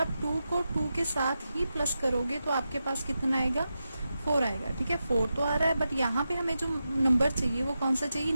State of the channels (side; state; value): both; inverted; correlation -0.89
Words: 2 को 2 के साथ ही प्लस करोगे तो आपके पास कितना आएगा 4 आएगा। ठीक है, 4 तो आ रहा है, बट यहाँ पे हमें जो नंबर चाहिए वो कौन सा चाहिए,